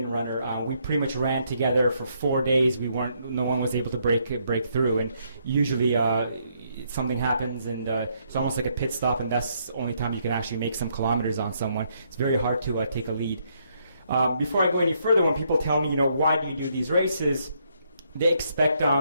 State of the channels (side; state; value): both; inverted; correlation -0.73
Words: runner. We pretty much ran together for 4 days. No one was able to break through. And usually something happens, and it's almost like a pit stop, and that's the only time you can actually make some kilometers on someone. It's very hard to take a lead. Before I go any further, when people tell me, why do you do these races, they expect